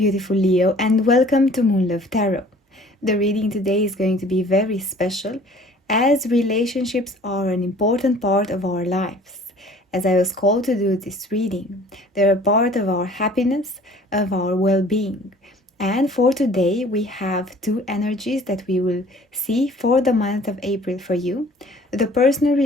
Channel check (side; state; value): both; normal; correlation 0.51